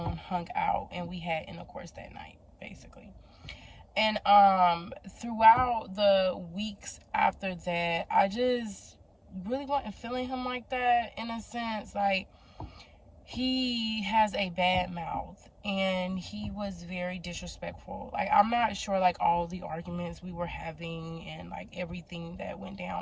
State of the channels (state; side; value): identical; both; correlation 1.00